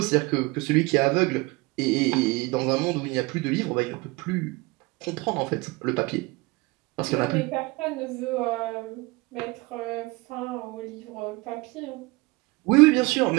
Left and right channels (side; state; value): left; quieter; 24.1 dB